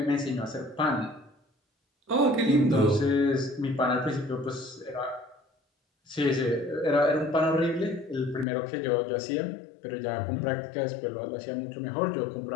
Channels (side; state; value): right; drops out; at 8.5 s